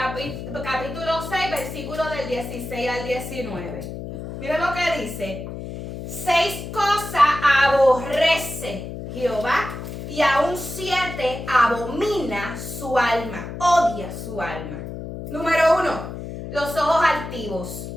6, versículo del 16 al 19. Mira lo que dice. 6 cosas aborrece Jehová y aún 7 abomina su alma, odia su alma. Número 1, los ojos altivos.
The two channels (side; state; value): left; noise; hum, 8 dB below the sound